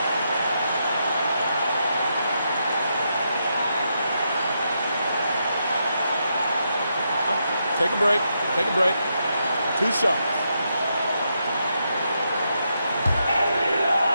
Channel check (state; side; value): inverted; both; correlation -0.81